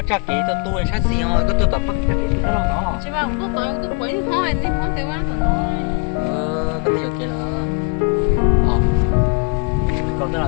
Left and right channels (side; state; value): right; quieter; 33.0 dB